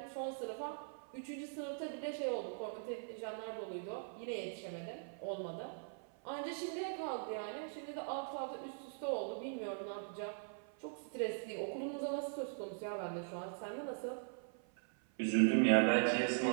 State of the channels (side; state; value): left; silent; 50 dB below the other